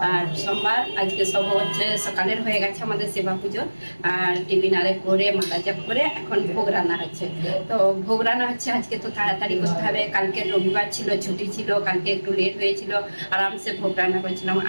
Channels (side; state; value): both; inverted; correlation -1.00